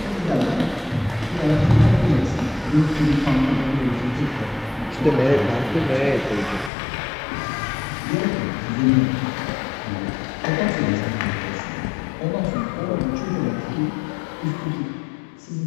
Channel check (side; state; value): right; drops out; at 6.7 s